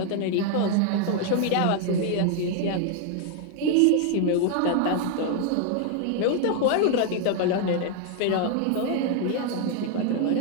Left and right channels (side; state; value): both; different; correlation 0.00